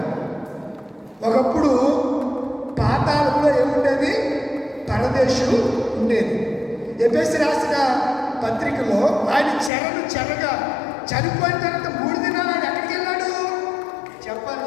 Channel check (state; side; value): drops out; right; at 9.7 s